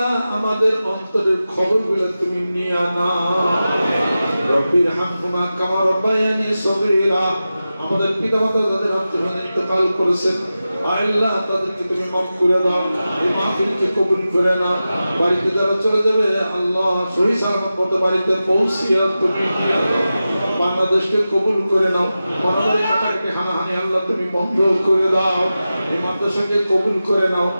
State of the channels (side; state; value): both; inverted; correlation -0.93